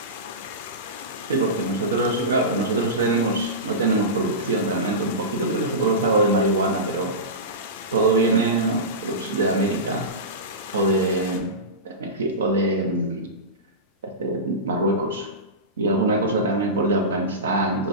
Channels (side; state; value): both; normal; correlation -0.19